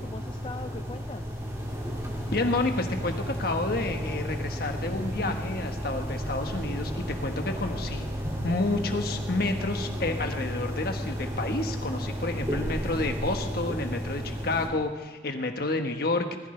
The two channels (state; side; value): normal; both; correlation 0.52